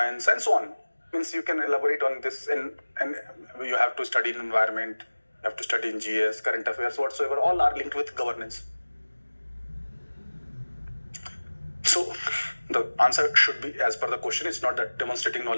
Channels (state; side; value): inverted; both; correlation -1.00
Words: and so on. Means you can elaborate on this, and you have to study in environment, you have to study in GS, current affairs, whatsoever. All are linked with governance. So the answer should be as per the question. It's not that demonstrating